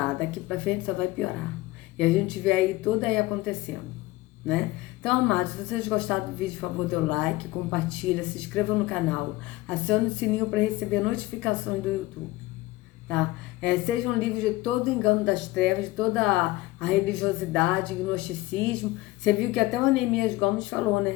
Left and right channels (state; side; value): quieter; right; 19.1 dB